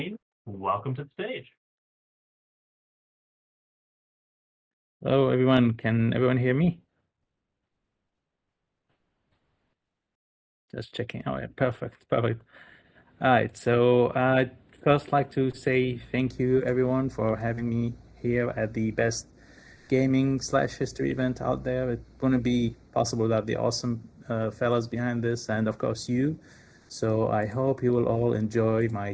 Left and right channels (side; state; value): both; identical; correlation 1.00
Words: welcome to the stage. Hello, everyone. Can everyone hear me? Just checking. Oh, yeah, perfect, perfect. All right. So I'd first like to say thank you, everyone, for having me here at the best gaming slash history event out there. It wouldn't be possible without the awesome fellas behind this, and of course you. So I hope you will all enjoy my